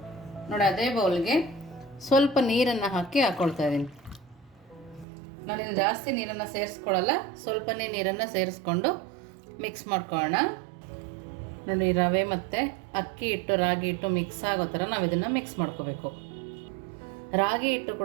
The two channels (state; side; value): drops out; left; at 5.1 s